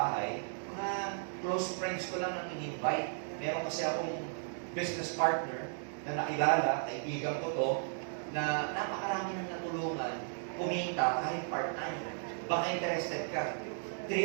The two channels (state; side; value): silent; left; digital silence